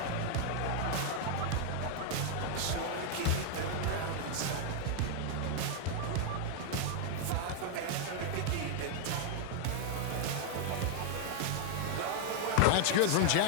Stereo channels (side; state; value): both; different; correlation 0.00